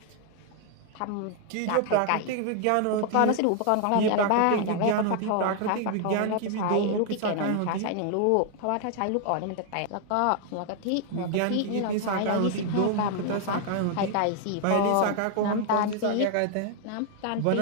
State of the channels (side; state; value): both; different; correlation 0.00